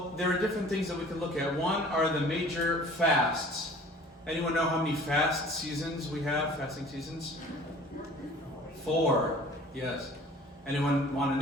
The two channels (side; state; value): both; normal; correlation 0.48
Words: there are different things that we can look at. One are the major fasts. Anyone know how many fast seasons we have, fasting seasons? 4, yes. Anyone want